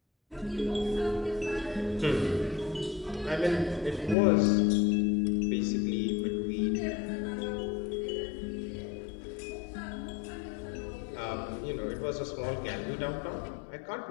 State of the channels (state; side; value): drops out; right; at 4.2 s